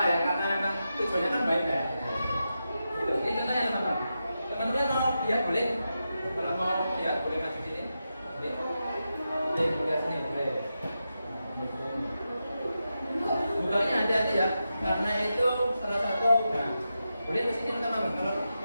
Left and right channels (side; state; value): both; inverted; correlation -0.89